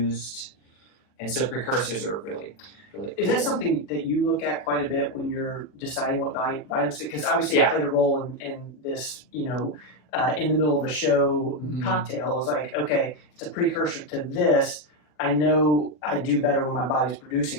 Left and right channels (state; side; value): late; right; 40 ms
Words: And so precursors are really, really cool. Is that something that you look at quite a bit when you're deciding what vitamins? Because obviously it played a role in this, in the middle of a show cocktail. It was like, okay, it's a precursor to this. I know I do better when my body's